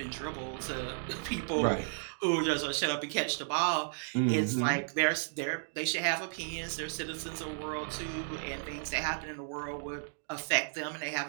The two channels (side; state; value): left; silent; digital silence